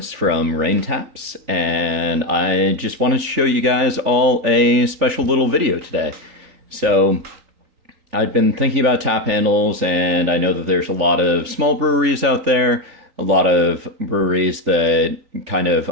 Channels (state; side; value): late; left; 3.5 ms